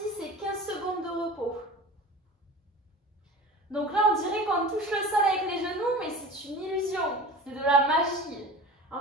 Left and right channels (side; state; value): both; normal; correlation 0.36